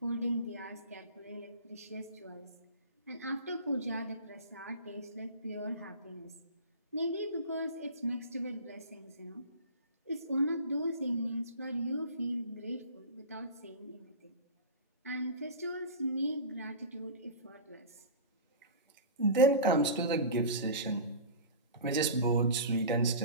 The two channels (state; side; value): inverted; both; correlation -0.33